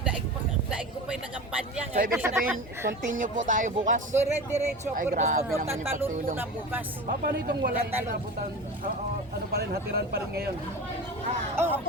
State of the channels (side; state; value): both; normal; correlation 0.31